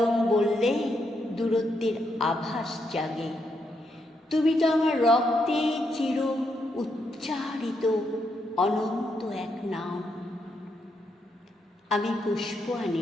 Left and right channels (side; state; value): both; normal; correlation 0.80